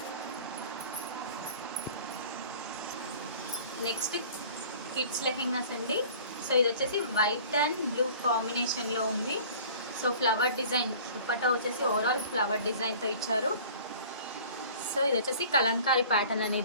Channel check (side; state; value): both; inverted; correlation -0.46